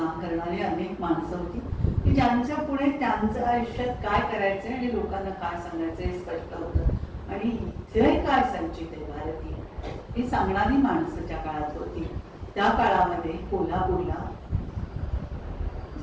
करणारे अनेक माणसं होती की ज्यांच्या पुढे त्यांचं आयुष्यात काय करायचंय आणि लोकांना काय सांगायचं हे स्पष्ट होतं. आणि इथे काय संचित आहे भारतीय ही सांगणारी माणसं त्या काळात होती. त्या काळामध्ये कोल्हापूरला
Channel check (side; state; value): both; identical; correlation 1.00